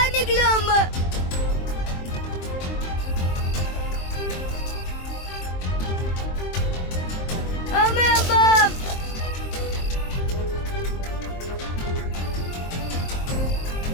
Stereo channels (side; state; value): right; late; 23 ms